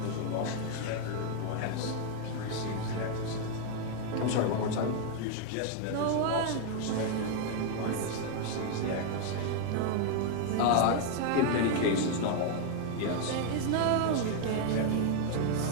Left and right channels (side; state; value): both; different; correlation 0.00